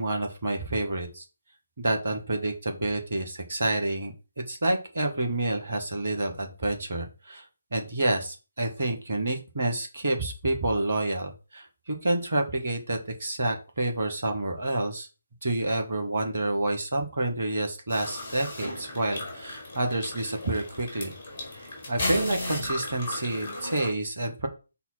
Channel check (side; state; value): both; inverted; correlation -0.84